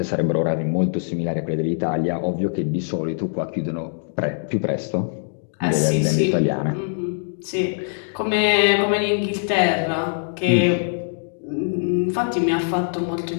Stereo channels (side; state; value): right; silent; digital silence